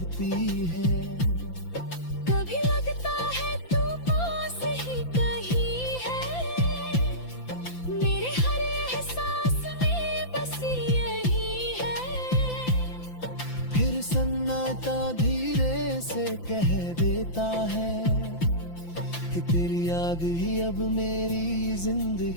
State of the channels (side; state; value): right; late; 5.9 ms